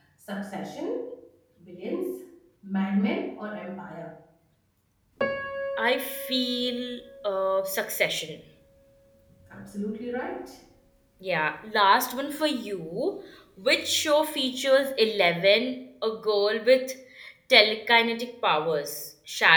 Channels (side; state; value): both; identical; correlation 1.00